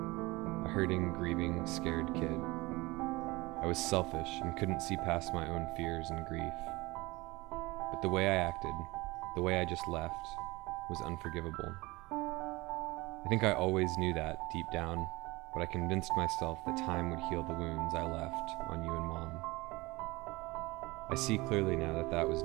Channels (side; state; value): left; quieter; 22.1 dB